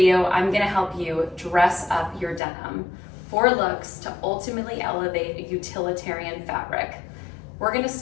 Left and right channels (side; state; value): right; drops out; at 2.4 s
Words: I'm going to help you dress up your denim. 4 looks to ultimately elevate a utilitarian fabric. We're going to